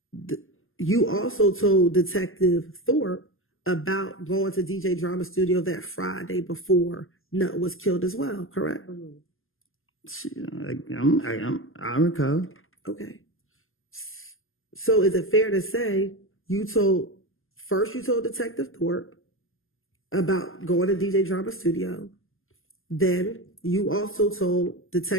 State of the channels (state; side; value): late; right; 0.60 ms